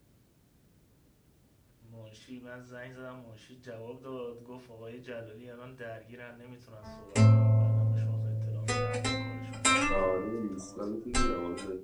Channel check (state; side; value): identical; both; correlation 1.00